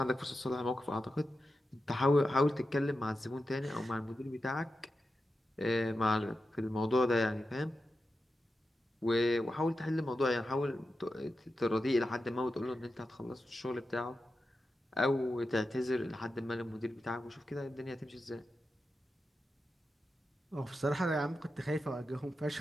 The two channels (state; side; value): normal; both; correlation 0.90